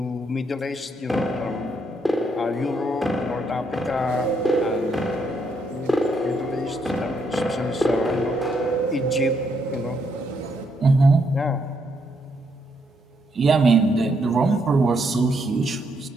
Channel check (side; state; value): both; normal; correlation 0.75